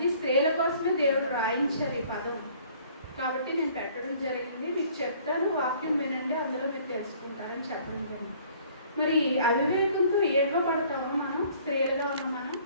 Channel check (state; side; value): inverted; both; correlation -0.56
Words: స్త్రీల కోసమే దేవుడు రాయించారు ఈ పదం, కాబట్టి నేను పెట్టడం జరిగింది. మీకు చెప్తాను, వాక్యం వినండి, అందులో మీరు తెలుసుకుంటారని చెప్పడం జరిగింది. మరి అవివేకంతో ఏడవబడతామా మనం, స్త్రీలుగా ఉన్న మనం?